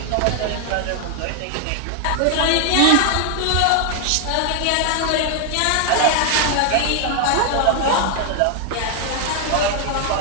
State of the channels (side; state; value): both; different; correlation 0.00